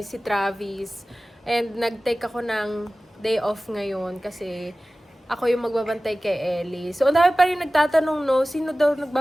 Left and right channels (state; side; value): normal; both; correlation 0.97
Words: si Travis. And nag-take ako ng day off ngayon kasi ako yung magbabantay kay Ellie. So, ang dami pa rin nagtatanong, no, sino daw